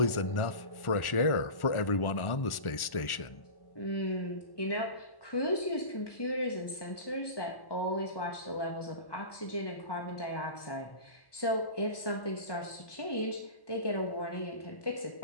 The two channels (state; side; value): late; right; 1.1 ms